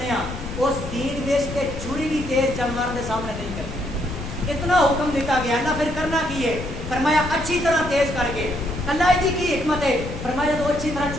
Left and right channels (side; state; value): left; noise; rumble, 8 dB below the sound